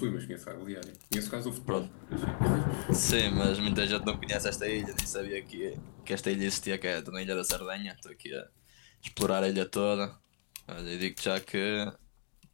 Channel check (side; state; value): right; silent; digital silence